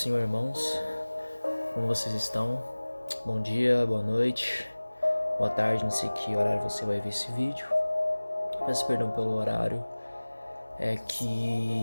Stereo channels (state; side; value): inverted; both; correlation -1.00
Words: irmãos. Como vocês estão? Bom dia, boa noite, boa tarde, não sei que horário você vai ver esse vídeo. Peço perdão pelo horário. É